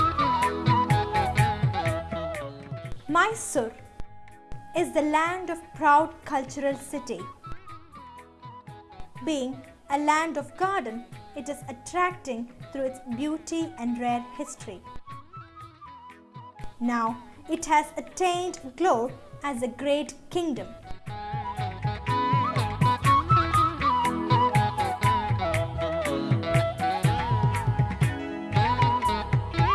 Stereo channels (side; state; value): both; identical; correlation 1.00